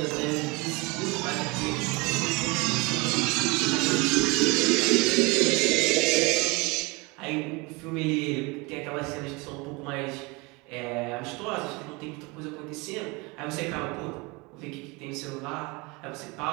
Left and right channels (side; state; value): left; quieter; 26.4 dB